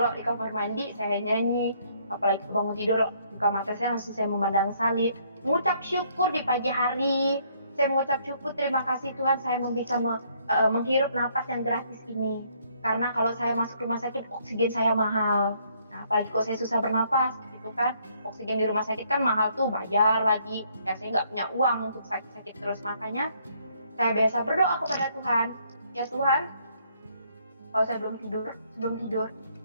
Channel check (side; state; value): both; inverted; correlation -0.67